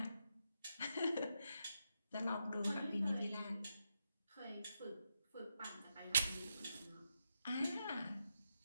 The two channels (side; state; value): both; inverted; correlation -0.84